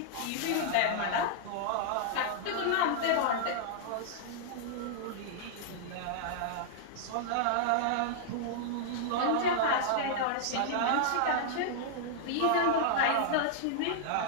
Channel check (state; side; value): different; both; correlation -0.01